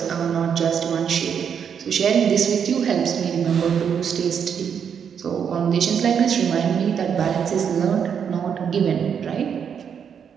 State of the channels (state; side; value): quieter; left; 7.5 dB